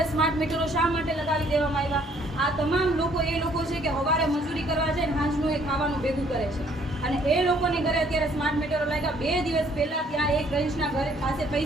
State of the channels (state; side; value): normal; both; correlation 0.63